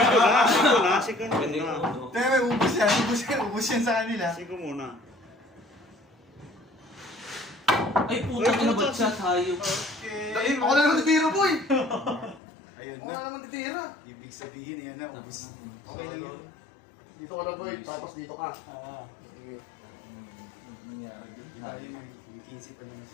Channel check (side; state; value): right; drops out; at 12.4 s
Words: Sige Pwede muna. uno. Pero may ubus yan sa kanila. Sige muna. Ay, puta ka na ba siya tayo? Okay. Ako na naman titira, boy! Ayun Ako na. na naman titira. Ibig sabihin yan na, ubus. Okay lang yun. Dito ka lang, boy. Tapos dito ka. Ah. Sige. Nangyari din. Ayun na, yung 15 pa naman